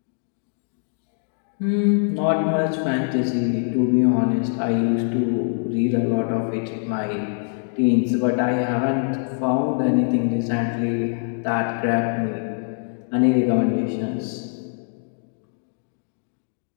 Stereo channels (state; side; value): silent; right; digital silence